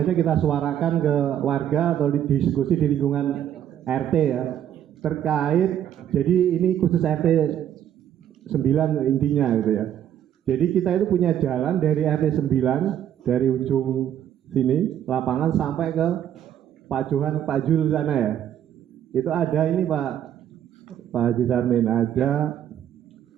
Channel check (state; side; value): quieter; left; 10.4 dB